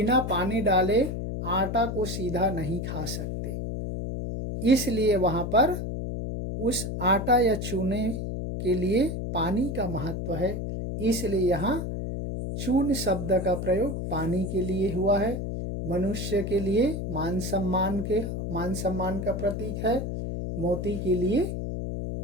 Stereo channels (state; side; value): noise; left; hum, 4 dB below the sound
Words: पानी डाले आटा को सीधा नहीं खा सकते, इसलिए वहाँ पर उस आटा या चूने के लिए पानी का महत्व है। इसलिए यहाँ चून शब्द का प्रयोग पानी के लिए हुआ है। मनुष्य के लिए मान सम्मान का प्रतीक है, मोती के लिए